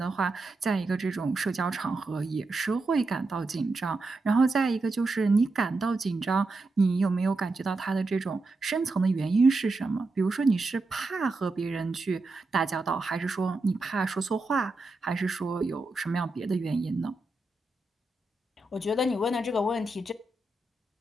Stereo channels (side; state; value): left; quieter; 3.2 dB